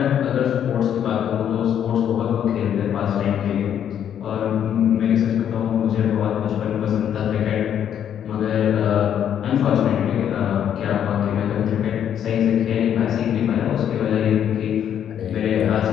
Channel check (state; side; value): quieter; right; 9.4 dB